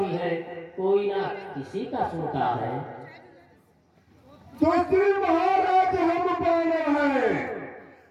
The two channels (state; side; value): identical; both; correlation 1.00